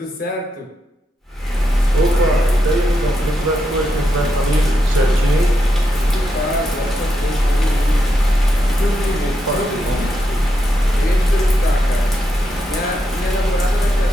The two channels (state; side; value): normal; both; correlation 0.83